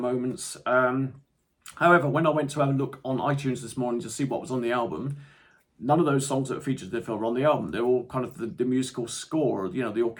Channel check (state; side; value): identical; both; correlation 1.00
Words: However, when I went to have a look on iTunes this morning to see what was on the album, none of those songs that are featured in the film are on the album. They're all kind of the musical score, the